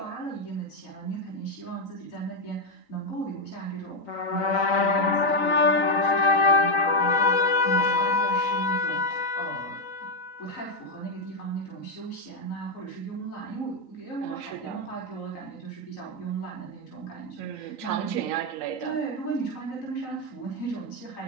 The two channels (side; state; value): right; late; 3.9 ms